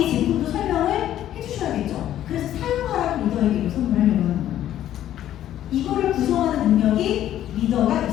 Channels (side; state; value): right; quieter; 12.0 dB